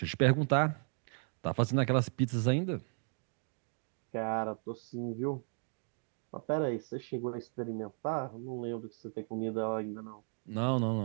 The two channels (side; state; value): left; silent; 54 dB below the other